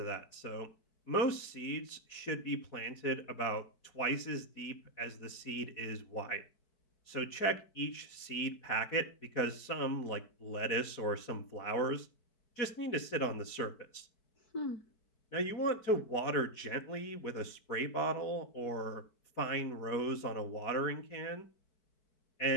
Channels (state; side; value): late; right; 4.6 ms